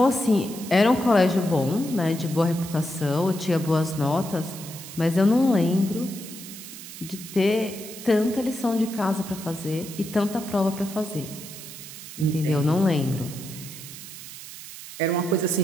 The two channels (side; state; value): right; noise; hiss, 13 dB below the sound